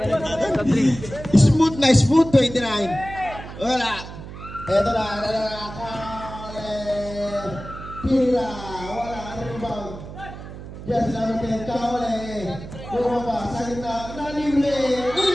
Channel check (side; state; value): right; noise; hum, 12 dB below the sound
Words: Smooth, 29. Wala. Ito na, Tira, wala, rebound. Jersey number 10, Kaole. Bumaba, sa gitna, nalibre.